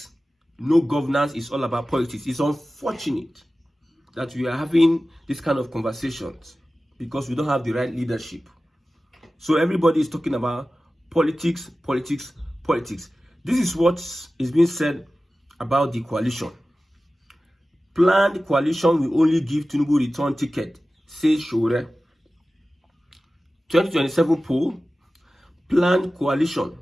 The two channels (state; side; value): normal; both; correlation 0.95